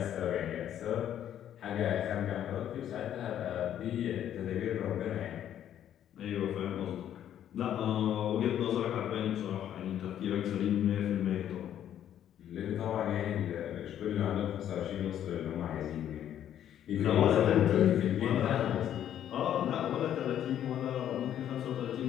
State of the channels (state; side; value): quieter; right; 10.6 dB